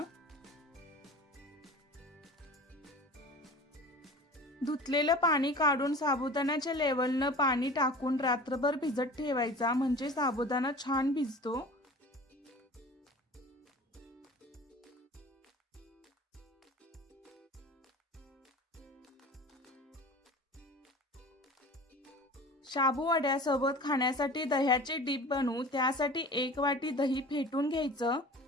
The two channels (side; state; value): both; normal; correlation 0.39